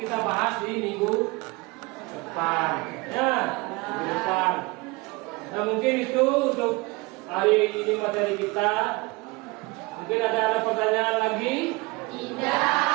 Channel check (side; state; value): left; quieter; 24.7 dB